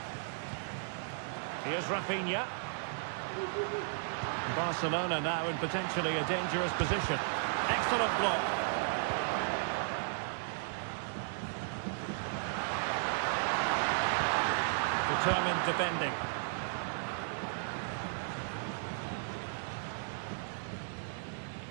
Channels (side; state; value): left; silent; 54 dB below the other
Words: Here's Rafinha. Barcelona now in potentially a dangerous position. Excellent block. Determined defending.